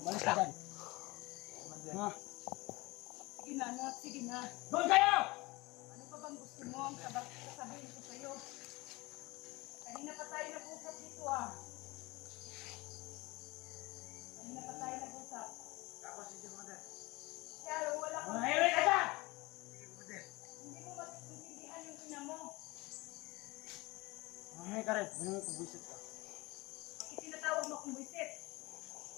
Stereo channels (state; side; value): quieter; right; 23.0 dB